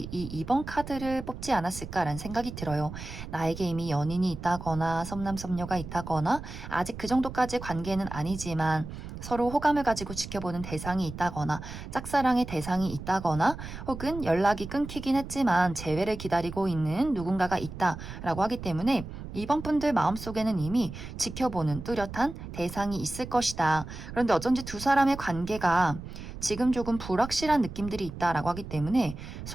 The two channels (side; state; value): right; noise; rumble, 11 dB below the sound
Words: 이 2번 카드를 뽑지 않았을까라는 생각이 들어요. 나에게 이미 연인이 있다거나 섭남섭녀가 있다거나 아직 그 정도까지의 관계는 아니지만 서로 호감을 가지고 지켜보는 대상이 있다거나 짝사랑의 대상이 있다거나 혹은 연락이 끊기긴 했지만 재회를 기다리고 있는 누군가가 있다라고 하기 때문에 2번 분들 마음속에는 이미 지켜보는 뚜렷한 대상이 있을 것이다. 그런데 어쩐지 두 사람의 관계가 지금 조금 불확실한 느낌들이 있다라고 하기 때문에